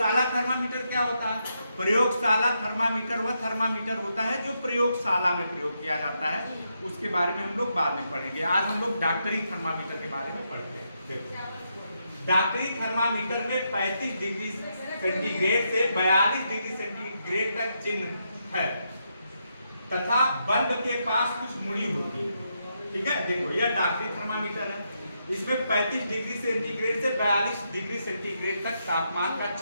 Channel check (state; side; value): inverted; both; correlation -0.81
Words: थर्मामीटर क्या होता है? प्रयोगशाला थर्मामीटर वह थर्मामीटर होता है जो प्रयोगशाला में प्रयोग किया जाता है। उसके बारे में हम लोग बाद में पढ़ेंगे। आज हम लोग डॉक्टरी थर्मामीटर के बारे में पढ़ते हैं। देखो, डॉक्टरी थर्मामीटर में 35 डिग्री सेंटीग्रेड से 42 डिग्री सेंटीग्रेड तक चिन्ह है तथा बल्ब के पास कुछ मुड़ी होती है, ठीक है? देखो, यह डॉक्टरी थर्मामीटर है। इसमें 35 डिग्री सेंटीग्रेड से 42 डिग्री सेंटीग्रेड तक तापमान का